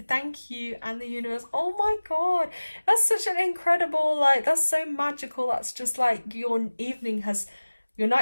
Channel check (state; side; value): inverted; both; correlation -1.00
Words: and the universe. Oh my god, that's such an incredible, like, that's so magical. That's just like your